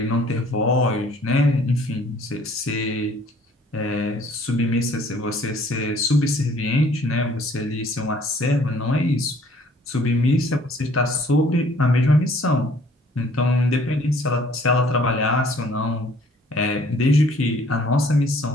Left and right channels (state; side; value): normal; both; correlation 0.57